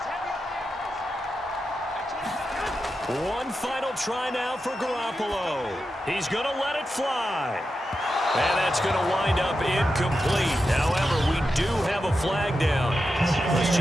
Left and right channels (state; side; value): normal; both; correlation 0.89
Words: One final try now for Garoppolo. He's going to let it fly. And that's going to wind up incomplete. However, we do have a flag down. Let's